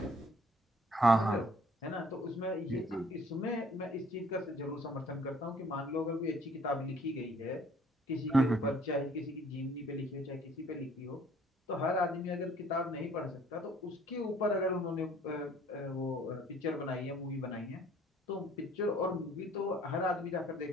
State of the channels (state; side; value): normal; both; correlation 0.58